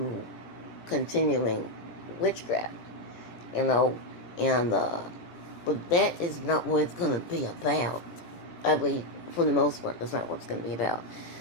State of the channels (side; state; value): right; late; 17 ms